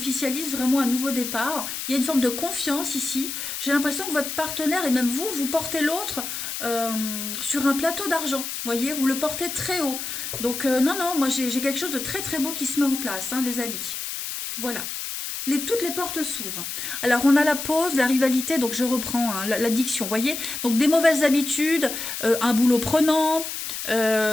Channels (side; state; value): left; noise; hiss, 6 dB below the sound